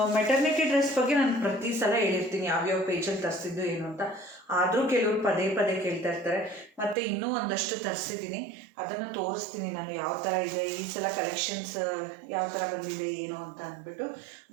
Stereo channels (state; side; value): drops out; left; at 7.0 s